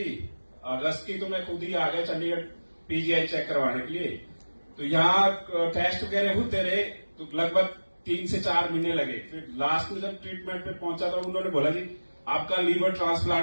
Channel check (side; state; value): both; inverted; correlation -1.00